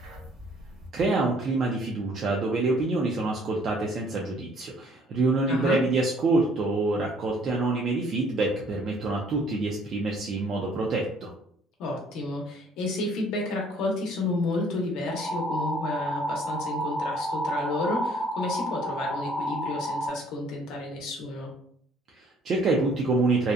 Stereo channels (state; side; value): normal; both; correlation 0.59